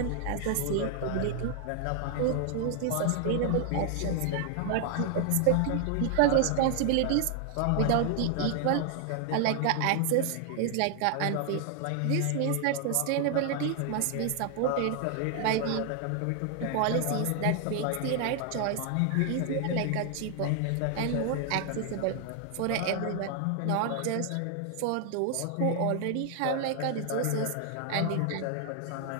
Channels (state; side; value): different; both; correlation 0.00